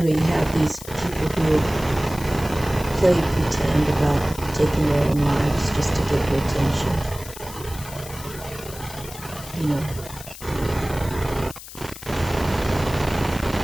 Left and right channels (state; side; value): noise; left; hiss, 14 dB below the sound